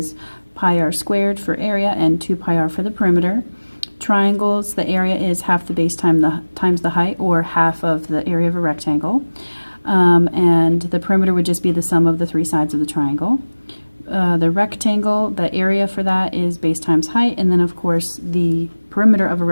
pi r squared for area and 2 pi r for the perimeter. Triangles, the area is half the base times the height, or half of the area of a rectangle. And the perimeter would just be the sum of the 3 sides of the triangle. The rectangle, the area for that is base times height, and then of course the perimeter of a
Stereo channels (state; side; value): inverted; both; correlation -1.00